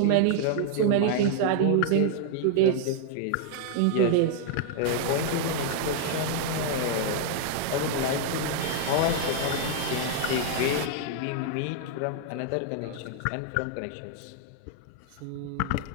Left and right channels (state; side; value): different; both; correlation 0.00